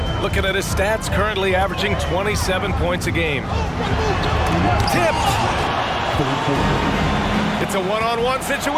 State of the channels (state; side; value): identical; both; correlation 1.00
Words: Looking at his stats, currently averaging 27 points a game. Tipped. It's a one-on-one